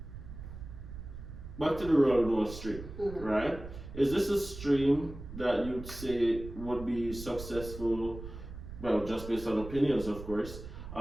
back to the Renewal stream, right? Is this a stream that you'd say would be successful, well, just based on opinions, of course,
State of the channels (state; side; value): noise; right; rumble, 12 dB below the sound